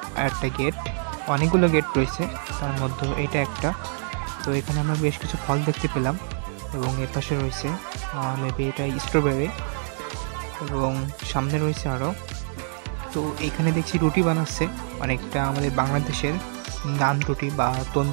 একটা গেট, অনেকগুলো গেট রয়েছে, তার মধ্যে এটা একটা। তো এখানে আমরা বেশ কিছু ফল দেখতে পেলাম, এবং এর পাশে রয়েছে মেবি এটা স্ট্রবেরি, এবং সামনে রয়েছে আরও। তো এখানে দেখছি রুটি বানাচ্ছে, অনেকটা আমাদের বাংলাদেশের নান রুটি বা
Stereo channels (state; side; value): silent; left; 61 dB below the other